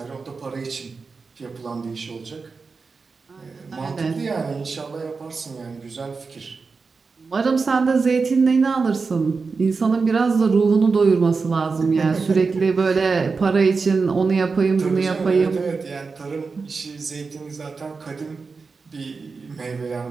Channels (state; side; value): quieter; left; 4.6 dB